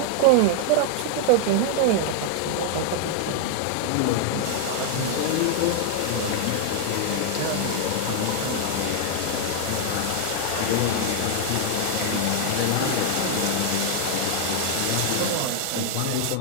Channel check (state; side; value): different; both; correlation 0.00